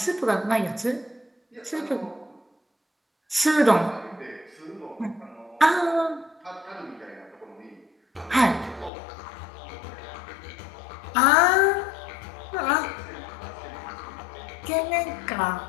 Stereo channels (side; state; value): right; drops out; at 8.9 s